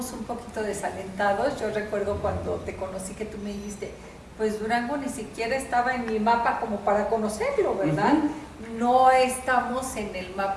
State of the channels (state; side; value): identical; both; correlation 1.00